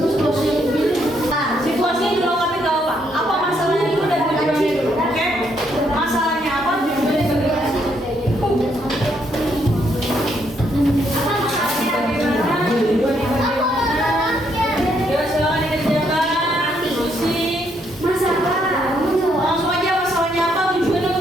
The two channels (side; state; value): both; normal; correlation 0.73